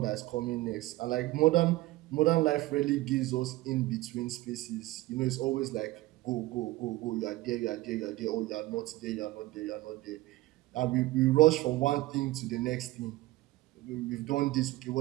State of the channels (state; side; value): quieter; left; 18.5 dB